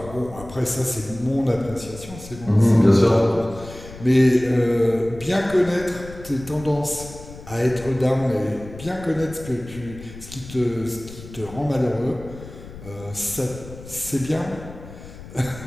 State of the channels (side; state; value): left; noise; rumble, 15 dB below the sound